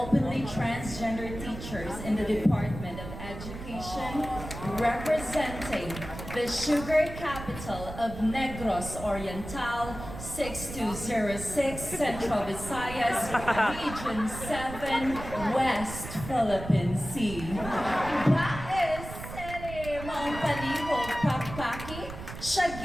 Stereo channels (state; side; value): noise; right; rumble, 10 dB below the sound